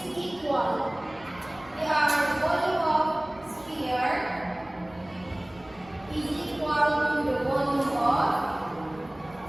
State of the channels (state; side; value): noise; right; rumble, 25 dB below the sound